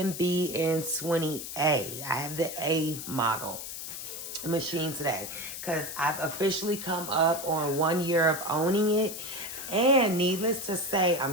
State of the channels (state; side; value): noise; left; hiss, 8 dB below the sound